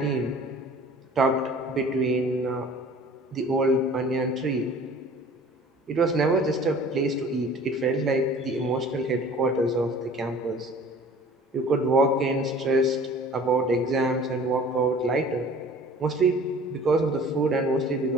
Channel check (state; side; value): normal; both; correlation 0.47